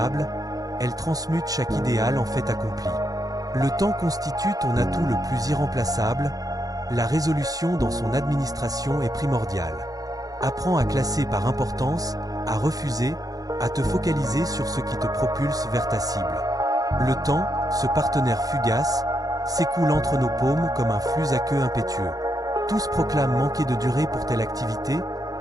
elle transmute chaque idéal en fait accompli. Le temps constitue ton atout le plus irremplaçable, la résolution dans son administration est primordiale. Apprends à classer par importance, à refuser, à te focaliser sur ce qui te propulse vers ta cible. Le temps, ce partenaire fugace, s'écoule entre nos paumes comme un flux à queue impétueux. Tous proclament manquer de durée pour telle activité,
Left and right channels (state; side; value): late; left; 0.18 ms